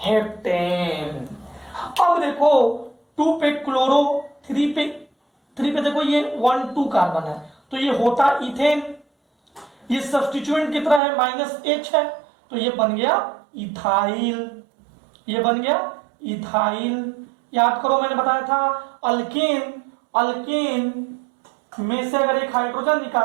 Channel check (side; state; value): left; drops out; at 11.0 s